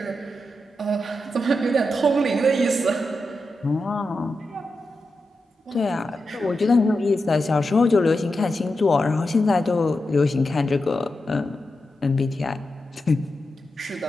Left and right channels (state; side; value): normal; both; correlation 0.89